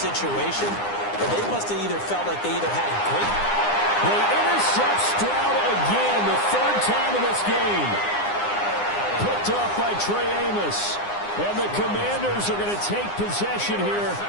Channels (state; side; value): late; right; 9.8 ms